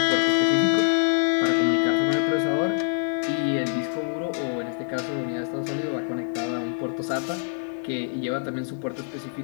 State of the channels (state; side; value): silent; right; digital silence